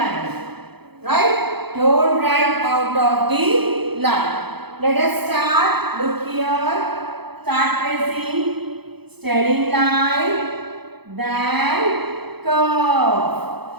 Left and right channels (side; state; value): left; late; 0.98 ms